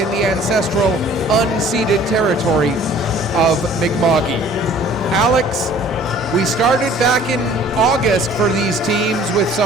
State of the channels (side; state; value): both; normal; correlation 0.52